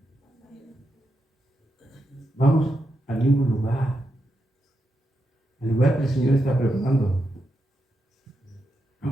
Vamos al mismo lugar, al lugar que el Señor está preparando.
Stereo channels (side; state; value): both; normal; correlation 0.85